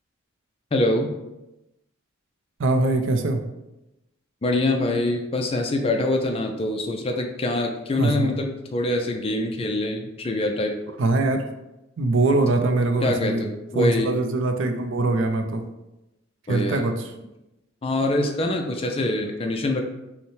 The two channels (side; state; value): both; normal; correlation 0.54